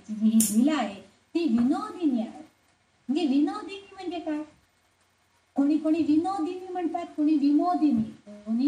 जी ही लीला आहे ती विनोदिनी आहे. म्हणजे विनोदिनी म्हणजे काय, कोणी कोणी विनोदिनी म्हणतात, कोणी विमोदिनी.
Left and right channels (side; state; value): both; identical; correlation 1.00